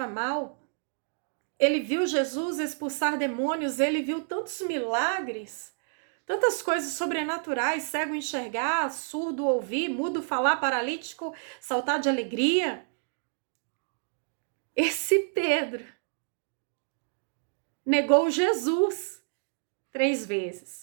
mal. Ele viu Jesus expulsar demônios, ele viu tantos milagres, tantas coisas sobrenaturais, cego enxergar, surdo ouvir, mudo falar, paralítico saltar de alegria. Esse Pedro negou Jesus 3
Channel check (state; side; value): silent; left; digital silence